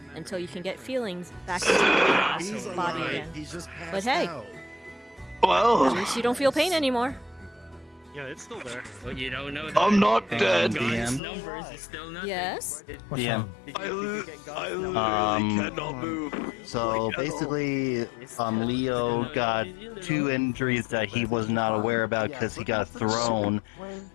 until you can get feelings back into your body again. But hey, Well, at least you don't feel pain anymore. Yeah, it's still there. But you don't know I'm not dead. God's numbers is still nothing. Yes? DM. I literally cannot move. So basically, Leo got 2 injuries that he was not aware about because he got thrown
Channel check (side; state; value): right; drops out; at 11.2 s